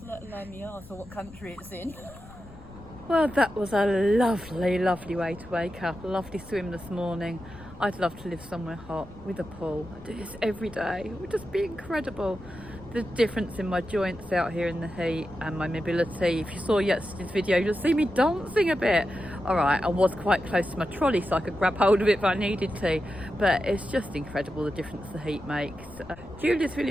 let alone my arse or what country it's in. Well, that was a lovely, lovely way to wake up. A lovely swim this morning. I'd love to live somewhere hot with a pool. I do this every day. It would just be incredible. The difference in my joints out here in the heat and my mobility. If you saw yesterday's video, you'll see me dancing a bit. All right, I was quite close to my trolley so I could grab hold of it if I needed to. But it's just incredible the difference the heat makes. Julia's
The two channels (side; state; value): left; noise; rumble, 20 dB below the sound